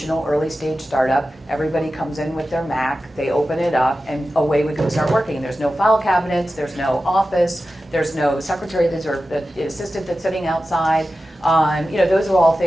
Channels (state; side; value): normal; both; correlation 0.93